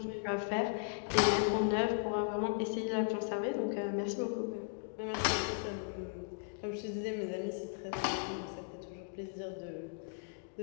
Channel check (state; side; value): silent; right; digital silence